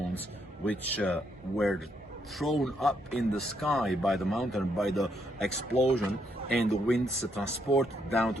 which were thrown up in the sky by the mountain, by the explosion, and the winds transported down to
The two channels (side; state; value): both; normal; correlation 0.75